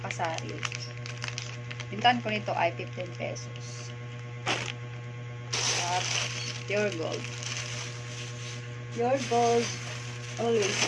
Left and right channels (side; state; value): both; identical; correlation 1.00